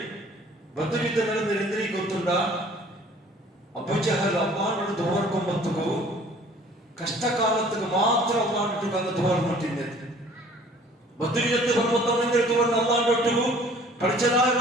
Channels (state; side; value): normal; both; correlation 0.53